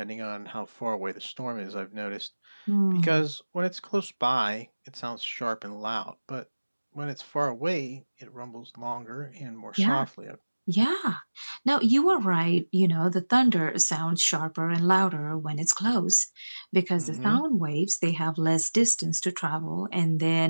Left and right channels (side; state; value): both; inverted; correlation -1.00